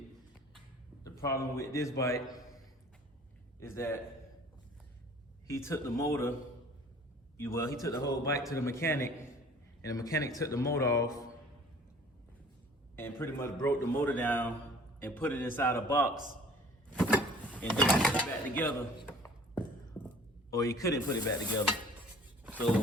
the problem with this bike is that he took the motor, he took the whole bike to the mechanic, and the mechanic took the motor off and pretty much broke the motor down and put it inside a box and then put it back together, or he couldn't put it back together.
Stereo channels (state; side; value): normal; both; correlation 0.50